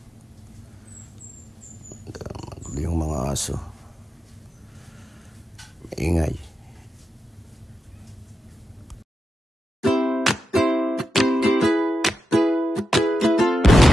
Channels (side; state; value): both; normal; correlation 0.89